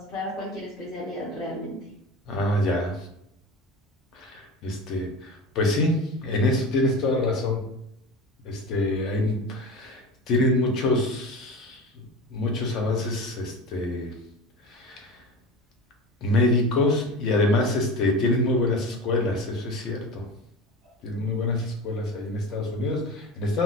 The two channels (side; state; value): both; normal; correlation 0.30